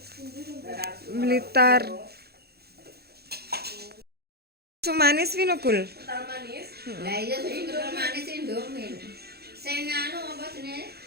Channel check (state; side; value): late; left; 0.46 ms